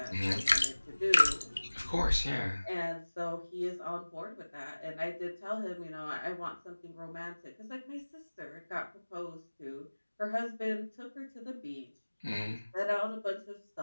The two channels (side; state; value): both; inverted; correlation -1.00